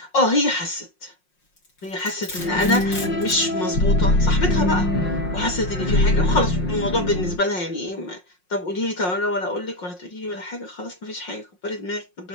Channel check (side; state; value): right; late; 5.5 ms